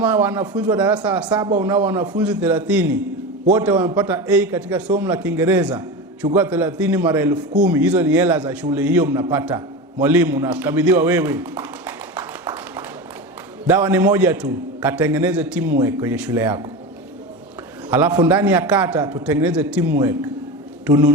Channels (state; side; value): normal; both; correlation 0.25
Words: wanafunzi wa darasa la 7 unao wanafunzi 30, wote wamepata A katika somo la Kiingereza, chukua 30 mara 10,000, hizo ni hela za shule hiyo mnapata. Mwalimu nakabidhiwa wewe. Dawa ni moja tu, katengeneze teamwork kwenye shule yako. Alafu ndani ya kata tutengeneze teamwork,